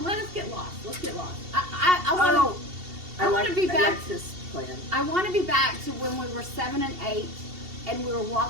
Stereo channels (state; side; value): late; left; 2.7 ms